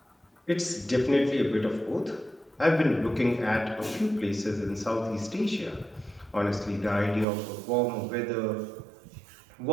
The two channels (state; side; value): drops out; left; at 7.2 s